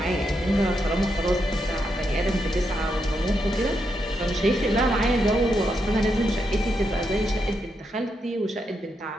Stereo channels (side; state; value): both; normal; correlation 0.82